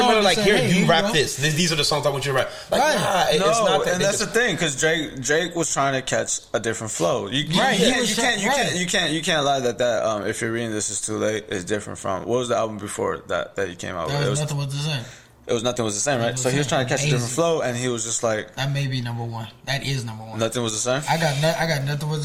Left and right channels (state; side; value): identical; both; correlation 1.00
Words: like, here, you rap this. These are the songs I want you to rap. Like, it's not that. And that's the thing, because Drake was trying to catch a different flow. You can't lie that if you're reading This Is Too Late is different from what was the album before that he came out with? It was Nothing Was the Same. It was Nothing Was the Same, right? So he was trying to catch a different flow, and he was just like, that may be number one. That is number one. Nothing Was the Same. I got Nothing Was